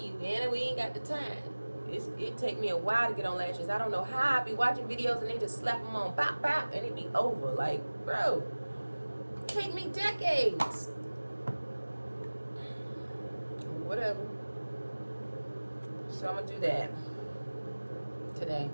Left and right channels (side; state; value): both; inverted; correlation -1.00